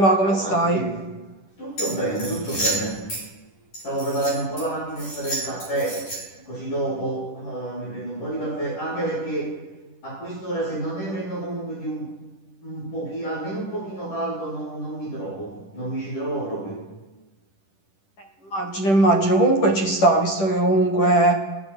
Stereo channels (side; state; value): right; late; 10 ms